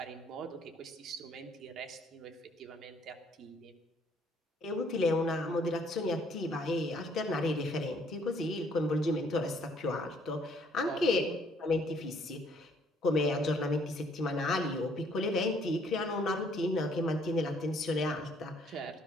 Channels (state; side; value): normal; both; correlation 0.64